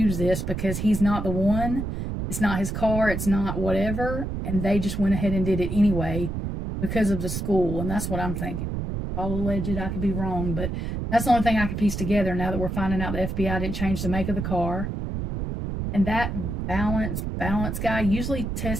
this because he's not the one. It's not his car. It's not whatever. And they just went ahead and did it anyway because of the school. And that's what I'm thinking. All alleged, I could be wrong, but that's the only thing I could piece together now that we're finding out the FBI didn't change the make of the car. And that balance guy usually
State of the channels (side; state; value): right; noise; rumble, 3 dB below the sound